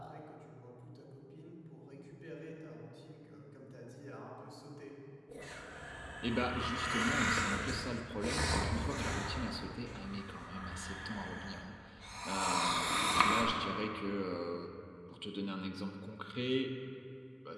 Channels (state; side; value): identical; both; correlation 1.00